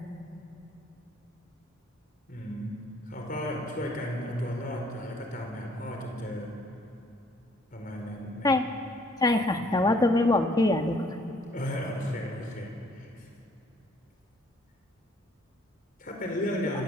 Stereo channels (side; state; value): both; normal; correlation 0.62